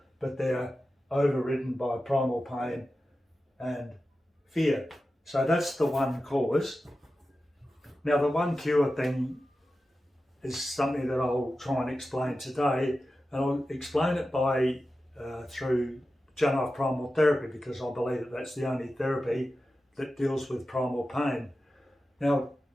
but they're overridden by primal pain and fear. So that's the one cause. Now the one cure thing is something that I'll try and explain today, and I'll explain it by through Janov Primal Therapy, because I believe that that's the only therapy that deals with primal pain. Now,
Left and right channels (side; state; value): both; normal; correlation 0.93